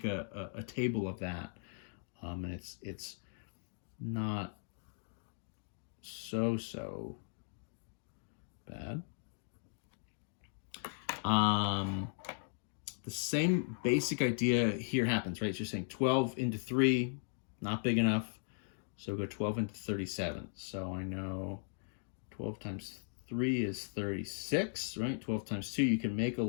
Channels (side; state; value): right; silent; digital silence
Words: a table of that, and it's not so bad. The same basic idea here happens, right? So you're saying 12 into 3, not big enough. So go 12 into 37. So I know 12 times 3 is 36, right? 12 times 2, you can make a